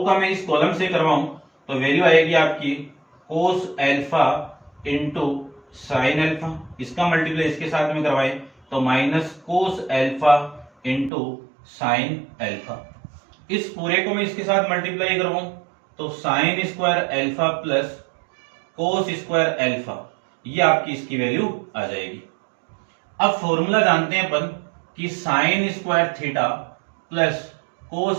का मैं इस कॉलम से करवाऊं तो वैल्यू आएगी आपकी कोस एल्फा इंटू साइन एल्फा। इसका मल्टीप्लाई इसके साथ में करवाए तो minus cos alpha into sine alpha. इस पूरे को मैं इसके साथ मल्टीप्लाई करवाऊं तो sine square alpha plus cos square alpha, ये आपकी इसकी वैल्यू आ जाएगी। अब फॉर्मूला जानते हैं अपन कि sine square theta plus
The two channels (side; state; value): left; drops out; at 11.1 s